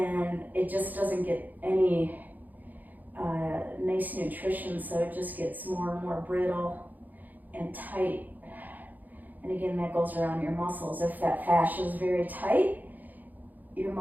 it just doesn't get any nice nutrition, so it just gets more and more brittle and tight. And again, that goes around your muscles. If that fascia is very tight, your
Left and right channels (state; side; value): late; left; 0.083 ms